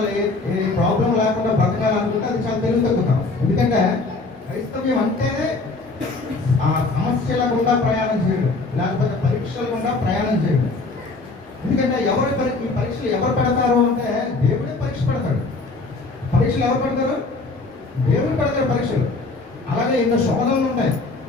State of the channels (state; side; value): quieter; right; 3.5 dB